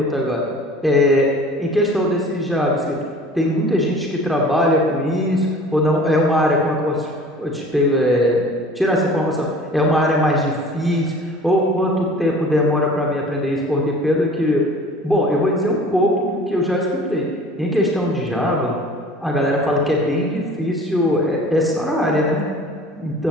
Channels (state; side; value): normal; both; correlation 0.46